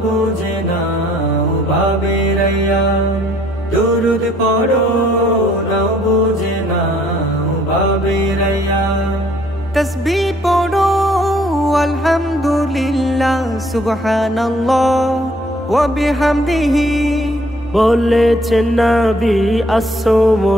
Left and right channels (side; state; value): both; normal; correlation 0.62